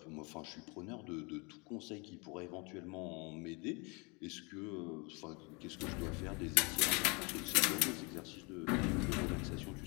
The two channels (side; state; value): right; quieter; 30.2 dB